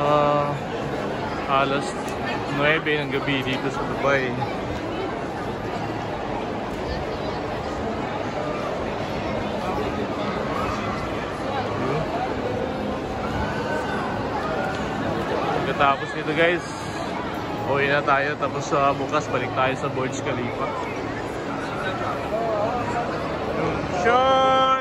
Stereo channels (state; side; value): identical; both; correlation 1.00